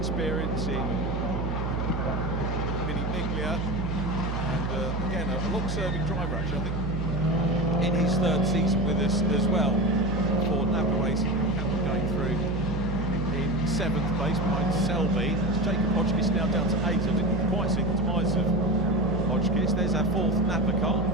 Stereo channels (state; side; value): noise; right; hum, 2 dB below the sound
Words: in Mini Miglia, and again a long-serving driver actually, I think in his 3rd season with us as well for Napa Racing. Campbell going through in 7th place behind Selby. It's Jacob Hodgkiss now down to 8. I didn't quite see the demise of Hodgkiss. There's our 4th Napa car.